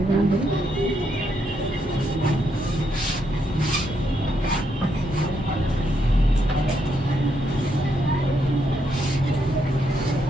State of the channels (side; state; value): both; normal; correlation 0.77